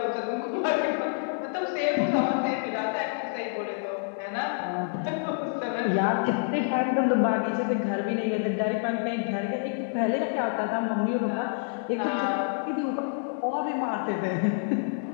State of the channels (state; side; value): silent; right; digital silence